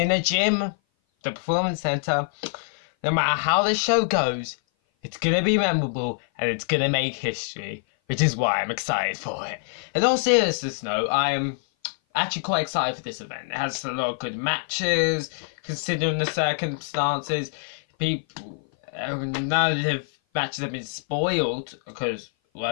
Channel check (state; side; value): silent; right; 56 dB below the other